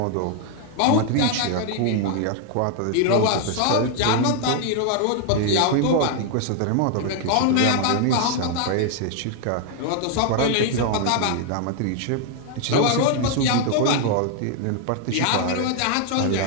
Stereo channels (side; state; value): both; different; correlation 0.00